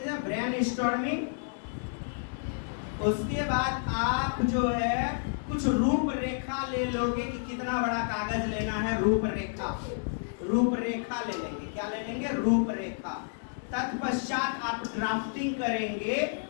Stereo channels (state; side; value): silent; right; digital silence